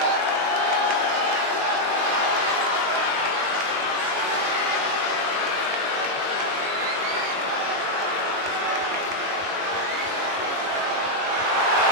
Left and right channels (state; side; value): late; left; 21 ms